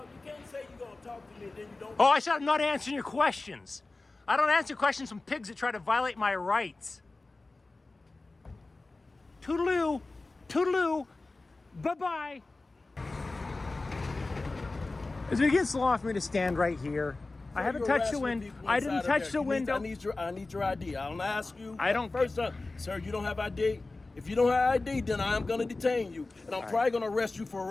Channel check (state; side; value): quieter; right; 3.3 dB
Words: can't say you're going to talk to me and then you don't. Oh, I said I'm not answering your questions. I don't answer questions from pigs that try to violate my rights. Toodaloo. Toodaloo. Bye-bye. Is it against the law for me to stand right here? I haven't touched the window. I didn't touch the window. I need your ID. I don't ask you. I don't. First up, sir, you don't have ID. If you don't have ID, then I am going to detain you, and I'm probably going to arrest you for